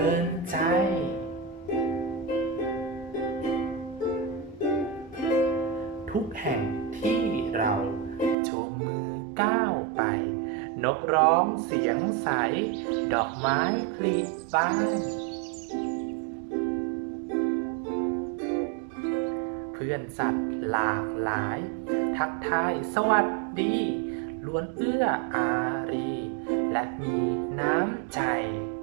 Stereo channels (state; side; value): drops out; left; at 8.3 s